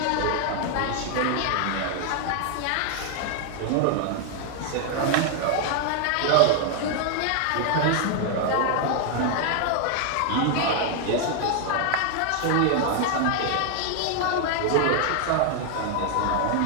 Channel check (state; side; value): different; both; correlation 0.00